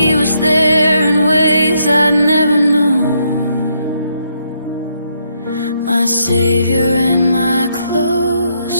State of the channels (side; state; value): both; inverted; correlation -0.76